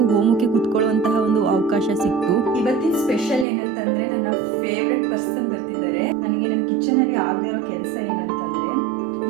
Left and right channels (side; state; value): left; drops out; at 3.5 s